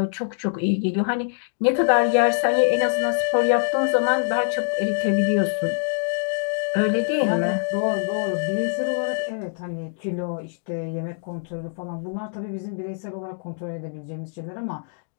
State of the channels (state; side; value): silent; right; digital silence